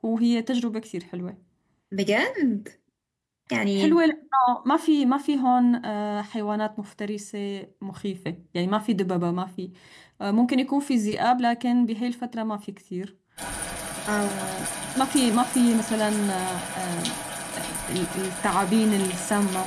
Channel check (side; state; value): both; identical; correlation 1.00